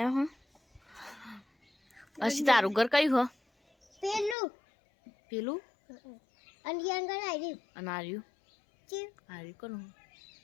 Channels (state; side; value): drops out; right; at 4.4 s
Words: હો અસી તારું ઘર કયું હો પેલું પેલું અને આગળ આવી અને આર્યું છે આર્યું કોનું